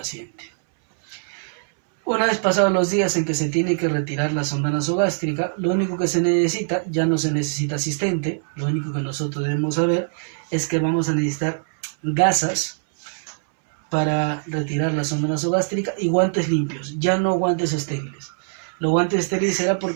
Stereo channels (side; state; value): left; silent; 64 dB below the other